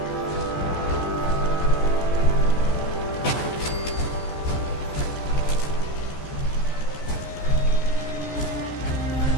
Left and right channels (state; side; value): late; right; 14 ms